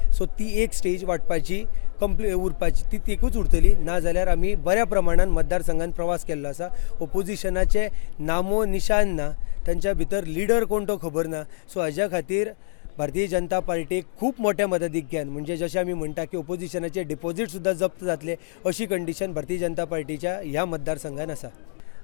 सो ती एक स्टेज वाटपाची उरपाची ती एकूच उरतली. ना जाल्यार आमी बऱ्या प्रमाणात मतदारसंघात प्रवास केल्लो आसा. ओपोजिशनाचे नामो निशान ना, तांच्या भितर लिडर कोण तो खबर ना. सो हाज्या खातीर भारतीय जनता पार्टीक खूब मोठ्या मताधिक्यान, म्हणजे जशें आमी म्हणटा की ओपोजिशनाचे डिपॉझिट सुद्दां जप्त जातले अशी कंडिशन भारतीय जनता पार्टीच्या ह्या मतदारसंघात आसा.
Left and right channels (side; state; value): right; silent; digital silence